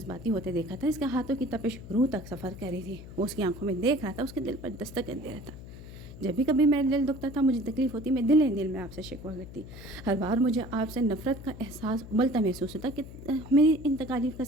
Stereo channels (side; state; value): left; noise; hum, 14 dB below the sound